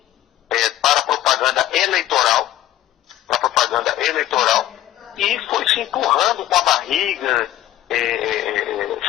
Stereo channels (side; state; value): right; quieter; 13.4 dB